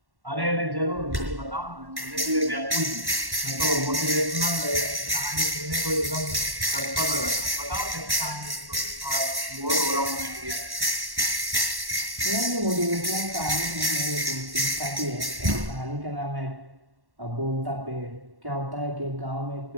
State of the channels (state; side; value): late; left; 1.1 ms